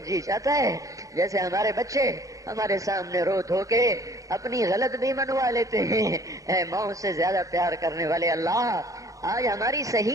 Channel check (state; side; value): late; left; 0.16 ms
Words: جی چاہتا ہے، جیسے ہمارے بچے ہمارے سامنے رو دھو کے اپنی غلط بھی منوا لیتے ہیں۔ اے ماں سے زیادہ پیار کرنے والے اللہ، آج ہماری